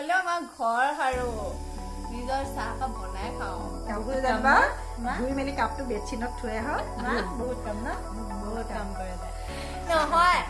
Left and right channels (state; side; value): identical; both; correlation 1.00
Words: আমাৰ ঘৰ সাৰো নিজৰ চাহকাপ বনাই খাওঁ কাপোৰ জানিবা ধুই মেলি কাপটো বেডশ্বীটত থৈ আহ বহুত কাম ন বহুত কাম কৰে নহয়